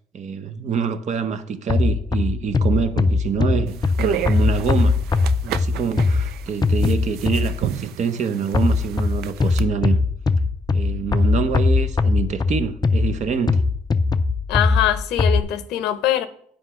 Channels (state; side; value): normal; both; correlation 0.73